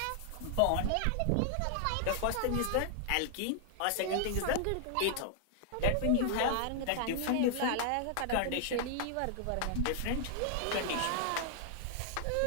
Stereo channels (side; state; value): both; different; correlation 0.00